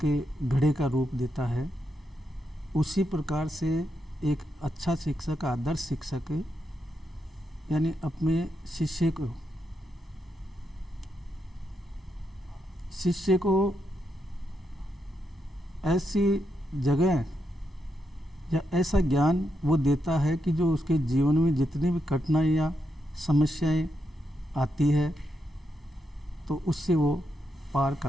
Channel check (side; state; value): both; normal; correlation 0.83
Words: घड़े का रूप देता है, उसी प्रकार से एक अच्छा शिक्षक, आदर्श शिक्षक यानी अपने शिष्य को ऐसी जगह या ऐसा ज्ञान वो देता है कि जो उसके जीवन में जितनी भी कठिनाइयाँ, समस्याएं आती है तो उससे वो पार